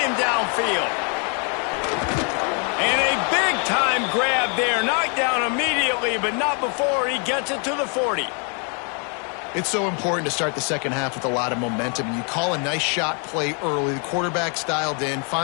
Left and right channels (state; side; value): quieter; right; 37.9 dB